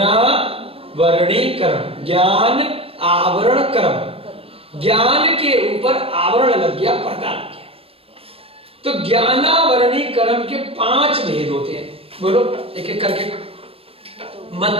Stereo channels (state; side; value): late; left; 0.28 ms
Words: ज्ञान आवरण कर्म। ज्ञान के ऊपर आवरण लग गया, पर्दा लग गया। तो ज्ञानावरणीकरण के 5 भेद होते हैं। बोलो एक एक करके।